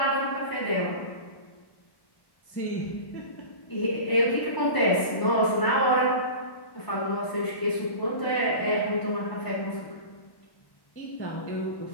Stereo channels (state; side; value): late; right; 1.1 ms